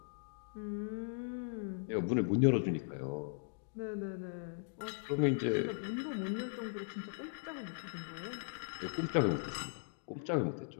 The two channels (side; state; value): right; silent; digital silence